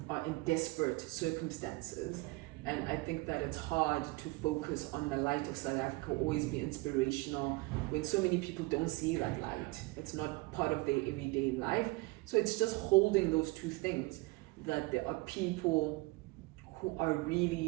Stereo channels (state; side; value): quieter; left; 23.7 dB